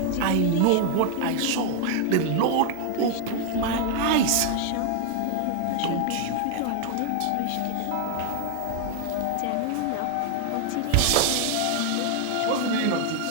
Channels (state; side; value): different; both; correlation 0.00